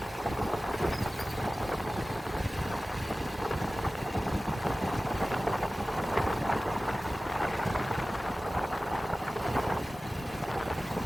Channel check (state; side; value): normal; both; correlation 0.96